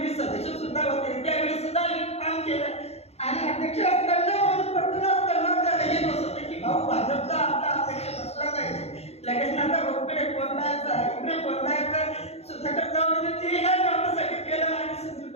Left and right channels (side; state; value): right; late; 0.30 ms